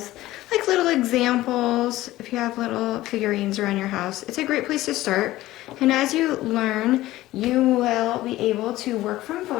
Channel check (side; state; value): right; quieter; 16.3 dB